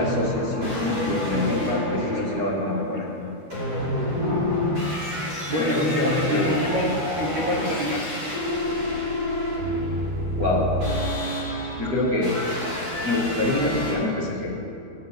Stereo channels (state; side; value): late; left; 13 ms